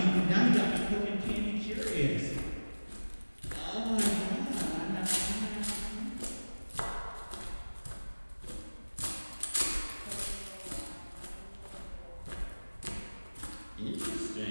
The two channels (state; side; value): inverted; both; correlation -1.00